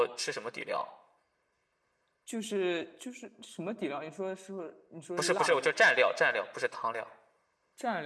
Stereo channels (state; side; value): identical; both; correlation 1.00